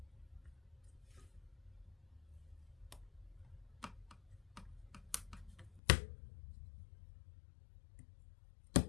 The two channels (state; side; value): drops out; right; at 5.8 s